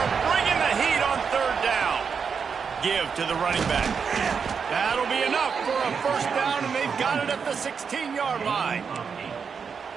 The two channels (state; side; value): quieter; left; 6.1 dB